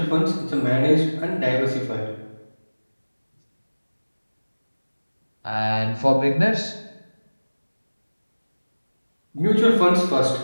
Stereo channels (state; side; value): inverted; both; correlation -1.00